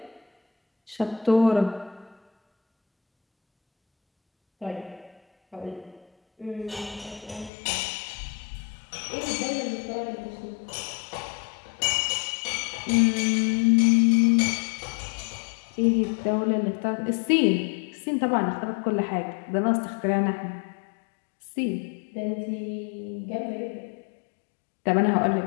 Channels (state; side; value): drops out; right; at 7.5 s